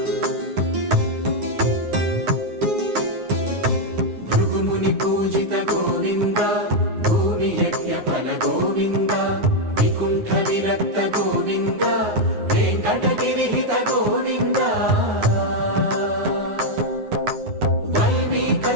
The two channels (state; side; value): late; left; 9.6 ms